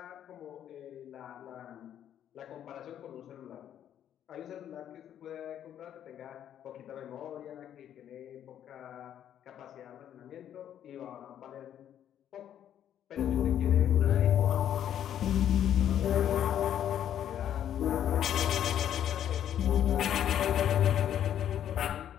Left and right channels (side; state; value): right; quieter; 10.3 dB